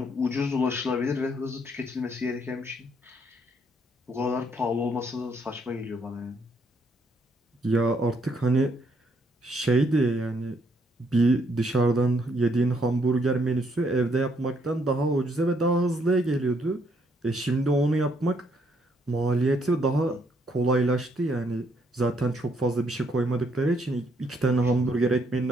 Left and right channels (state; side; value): normal; both; correlation 0.71